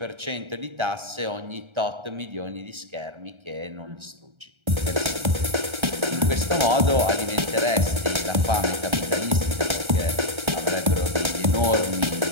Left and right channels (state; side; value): late; left; 1.3 ms